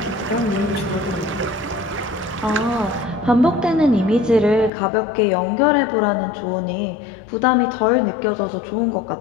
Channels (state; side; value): drops out; right; at 4.7 s